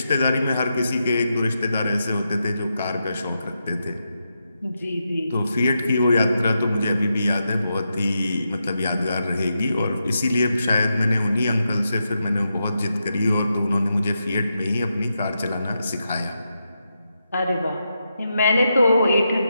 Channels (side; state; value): both; inverted; correlation -0.86